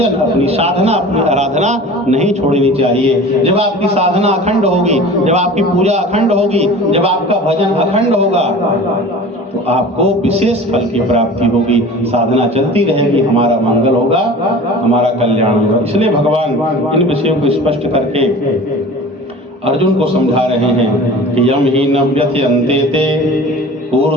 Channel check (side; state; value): both; normal; correlation 0.40